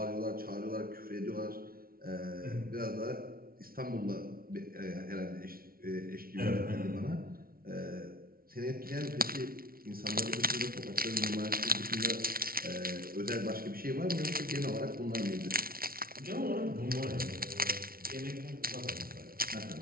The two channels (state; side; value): late; left; 0.43 ms